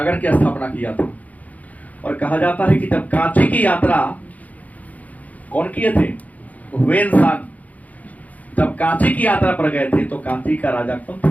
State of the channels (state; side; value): late; right; 0.074 ms